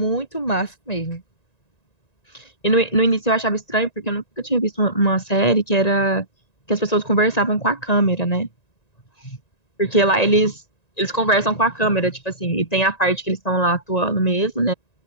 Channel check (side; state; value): right; late; 1.9 ms